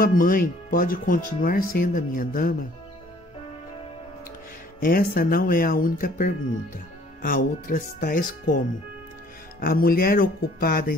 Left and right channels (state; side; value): normal; both; correlation 0.57